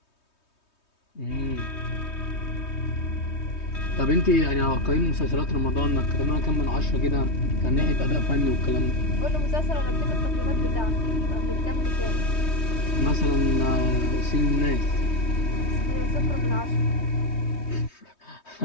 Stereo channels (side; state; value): right; late; 3.2 ms